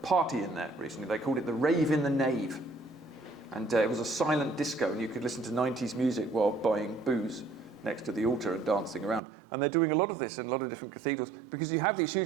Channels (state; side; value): drops out; left; at 9.2 s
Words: party in there recently. They called it the Rave in the Nave. And it was a silent disco, and you could listen to 90s music while buying booze next to the altar and dancing around. And they're doing a lot of this in a lot of different cathedrals, because you have these